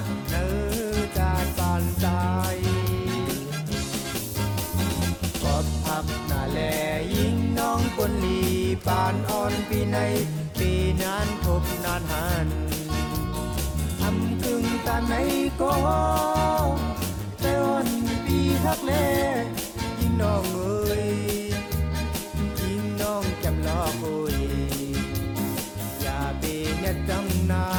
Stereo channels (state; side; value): identical; both; correlation 1.00